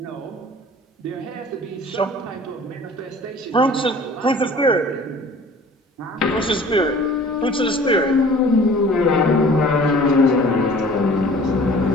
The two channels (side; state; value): both; normal; correlation 0.48